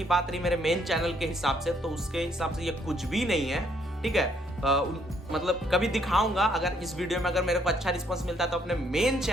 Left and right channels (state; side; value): normal; both; correlation 0.69